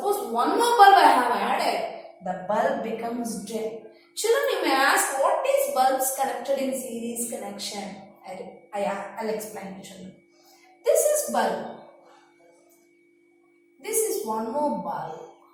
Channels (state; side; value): identical; both; correlation 1.00